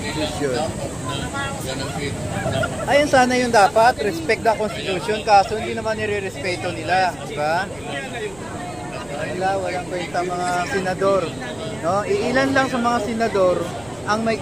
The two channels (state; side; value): noise; right; rumble, 22 dB below the sound